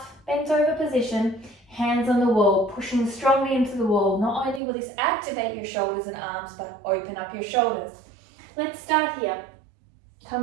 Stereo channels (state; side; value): drops out; left; at 4.6 s